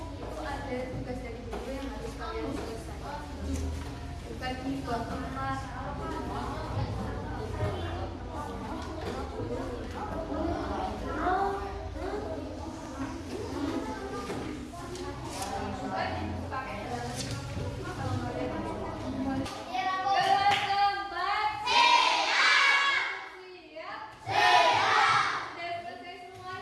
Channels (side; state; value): both; identical; correlation 1.00